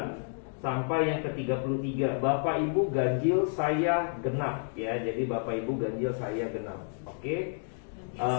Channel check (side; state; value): right; silent; 58 dB below the other